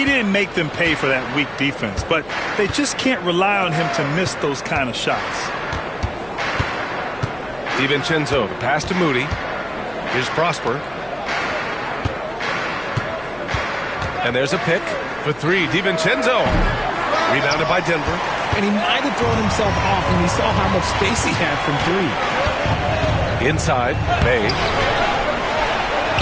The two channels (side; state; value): left; noise; hum, 24 dB below the sound